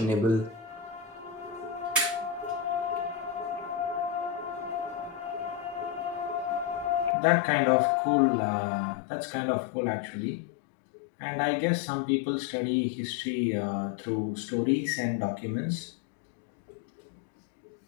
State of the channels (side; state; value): right; drops out; at 7.2 s